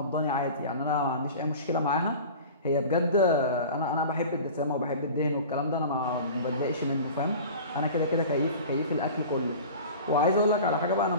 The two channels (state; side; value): inverted; both; correlation -0.38